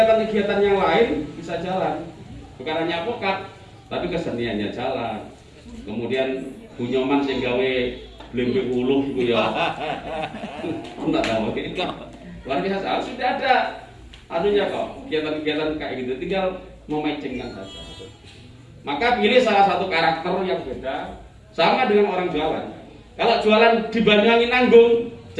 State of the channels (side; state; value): both; identical; correlation 1.00